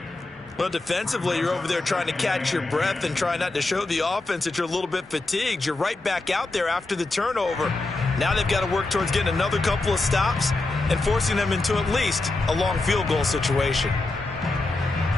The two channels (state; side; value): quieter; right; 3.1 dB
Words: Well, defensively, you're over there trying to catch your breath and try not to show the offense that you're a little bit fatigued. You're right back out there after the turnover. Now they've got to work towards getting another couple of stops and forcing them into at least a long field goal situation.